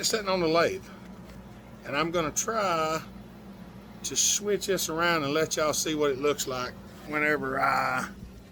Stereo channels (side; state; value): both; identical; correlation 1.00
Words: sitting on the lathe, and I'm gonna try to switch this around and let y'all see what it looks like whenever I